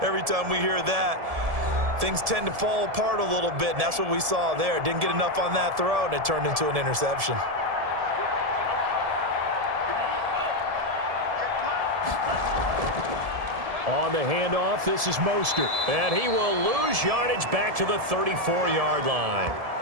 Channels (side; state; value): left; late; 1.7 ms